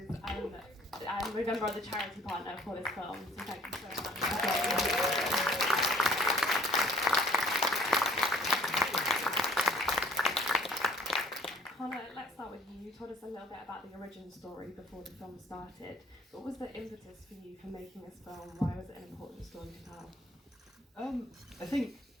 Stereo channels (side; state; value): both; normal; correlation 0.55